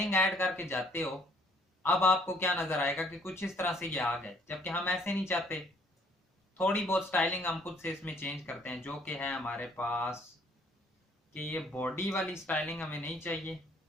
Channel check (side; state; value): both; normal; correlation 0.62